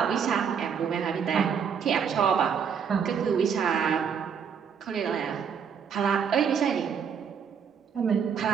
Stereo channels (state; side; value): quieter; left; 7.1 dB